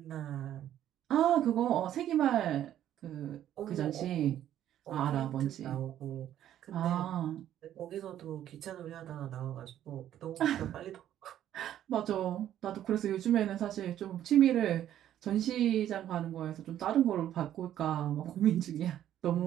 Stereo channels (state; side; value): quieter; left; 11.5 dB